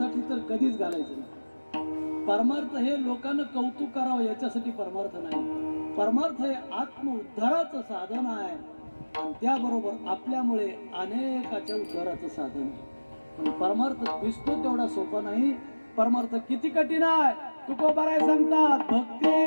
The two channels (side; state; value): both; inverted; correlation -1.00